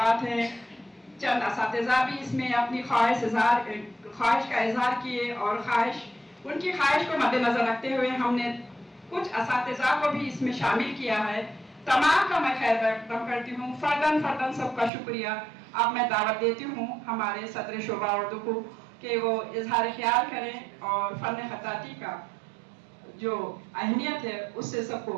हैं, चंद असातिज़ा भी इसमें अपनी ख्वाहिश का इजहार किए और उनकी ख्वाहिश को मद्देनजर रखते हुए हमने कुछ असातिज़ा को भी इसमें शामिल किया है। तमाम का मैं खैर मकदम करती हूँ, फर्दन सबका शुक्रिया। अब मैं दावत देती हूँ हमारे सदर शोबा उर्दू को कि वो इजहार ख्याल करें और फ़न खत्ताती का जो अहमियत है उससे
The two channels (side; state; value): left; drops out; at 14.9 s